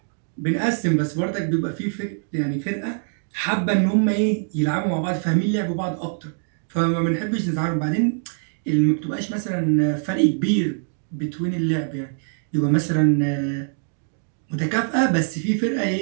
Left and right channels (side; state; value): left; silent; digital silence